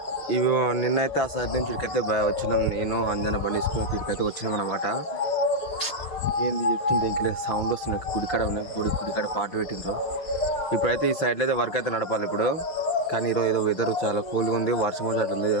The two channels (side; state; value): right; late; 5.7 ms